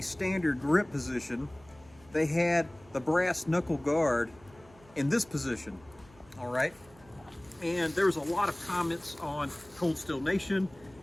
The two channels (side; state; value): right; noise; hum, 26 dB below the sound